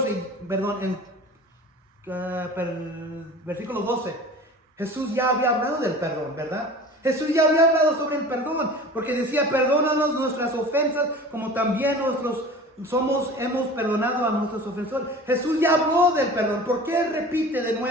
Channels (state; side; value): normal; both; correlation 0.39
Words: versículo 12? Jesús ya había hablado del perdón, ¿verdad? Jesús ya había hablado sobre el perdón, porque decía, perdónanos nuestras ofensas, como también hemos perdonado a nuestros ofensores. Jesús ya habló del perdón. ¿Por qué repite de